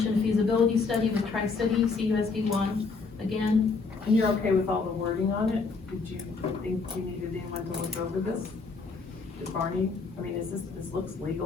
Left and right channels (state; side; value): quieter; right; 4.4 dB